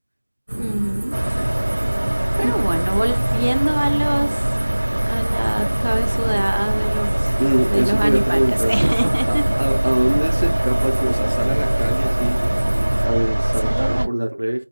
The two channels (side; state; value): both; inverted; correlation -1.00